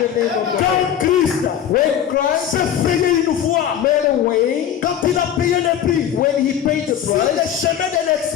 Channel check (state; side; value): quieter; right; 9.7 dB